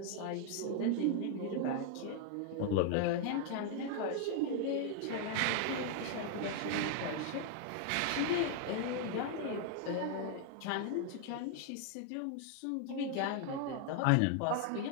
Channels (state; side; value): different; both; correlation 0.00